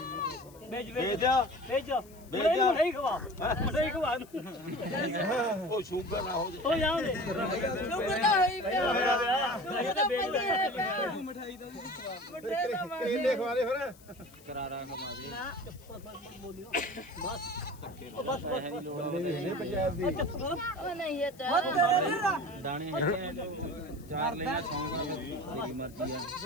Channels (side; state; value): left; noise; hiss, 24 dB below the sound